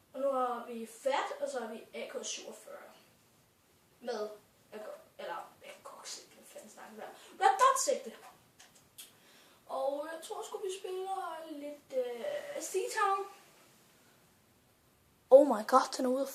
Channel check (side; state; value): both; identical; correlation 1.00